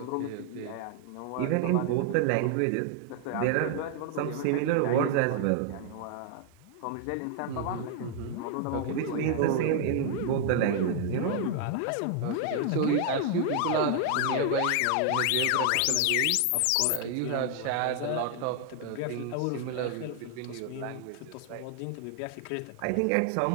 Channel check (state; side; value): different; both; correlation 0.00